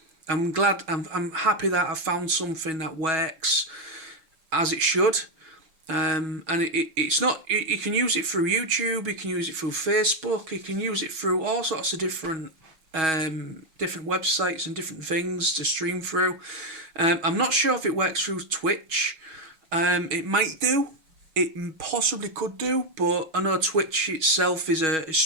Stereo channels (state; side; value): late; left; 6.3 ms